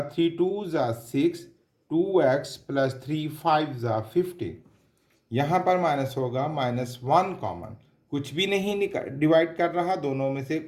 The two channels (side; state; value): both; identical; correlation 1.00